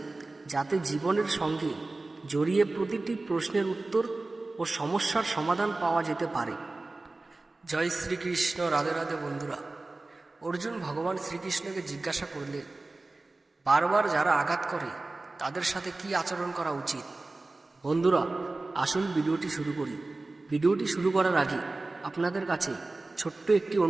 যাতে জীবনের সঙ্গে জড়িয়ে প্রতিটি প্রশ্নের উত্তর ও সমস্যার সমাধান পাওয়া যেতে পারে। জয় শ্রীকৃষ্ণ। রাধে রাধে বন্ধুরা। অর্জুন ভগবান শ্রীকৃষ্ণকে জিজ্ঞাসা করলেন, বারবার যারা আঘাত করে তাদের সাথে কি আচরণ করা উচিত। বন্ধুরা, আসুন ভিডিওটি শুরু করি। ভিডিওটি শুরু করার আগে আপনাদের কাছে ছোট্ট একটি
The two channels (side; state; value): left; quieter; 3.2 dB